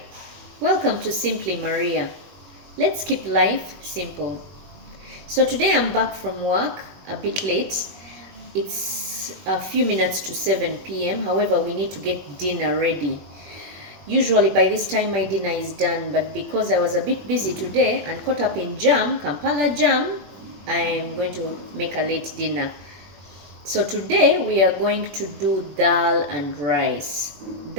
Welcome to Simply Maria. Let's keep life simple. So today I'm back from work a bit late. It's a few minutes to 7 p.m. However, we need to get dinner ready. Usually by this time my dinner is done, but because I was a bit busy today and caught up in Kampala jam, I'm going to make a late dinner. So today we are going to do dal and rice.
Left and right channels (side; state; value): left; late; 21 ms